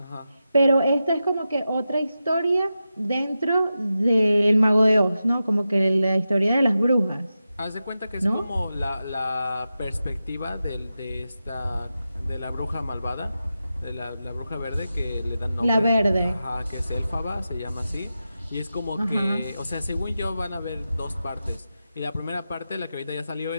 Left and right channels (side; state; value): both; inverted; correlation -0.91